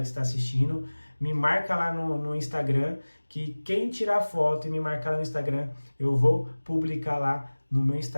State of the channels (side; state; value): both; inverted; correlation -1.00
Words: está assistindo. Me marca lá no Instagram, que quem tirar foto e me marcar lá no Instagram, eu vou publicar lá no meu